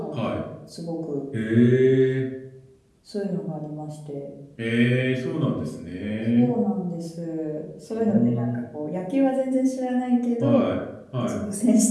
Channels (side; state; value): both; identical; correlation 1.00